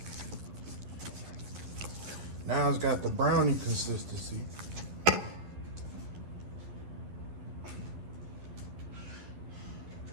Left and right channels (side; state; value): left; late; 11 ms